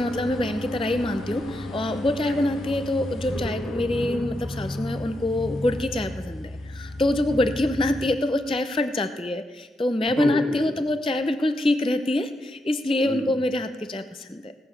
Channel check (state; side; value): normal; both; correlation 0.83